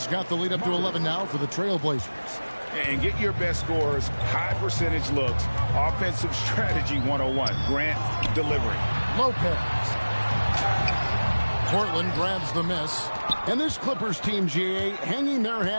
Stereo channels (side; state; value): both; inverted; correlation -1.00